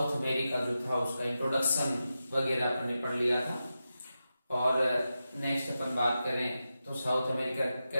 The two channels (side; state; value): both; inverted; correlation -0.90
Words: अमेरिका जो था उसका इंट्रोडक्शन वगैरह अपन ने पढ़ लिया था। और नेक्स्ट अपन बात करें तो साउथ अमेरिका